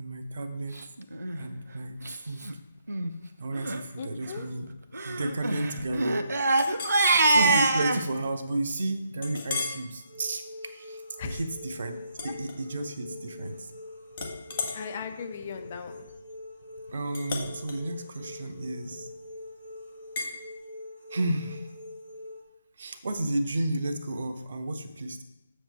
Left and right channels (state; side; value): inverted; both; correlation -0.77